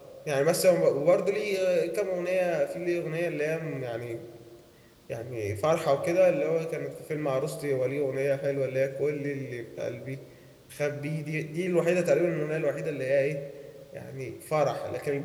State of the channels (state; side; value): identical; both; correlation 1.00